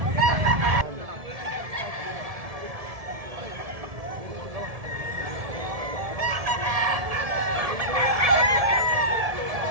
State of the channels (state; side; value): late; left; 1.7 ms